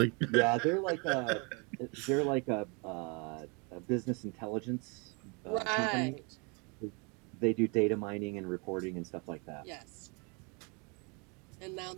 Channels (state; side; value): quieter; left; 32.3 dB